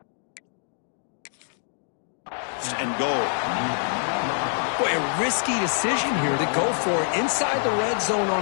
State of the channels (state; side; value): silent; right; digital silence